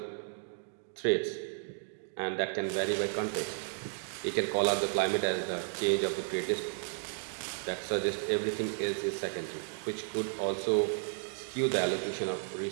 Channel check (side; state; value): left; silent; digital silence